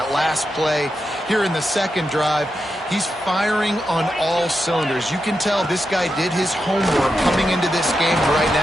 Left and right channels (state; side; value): normal; both; correlation 0.87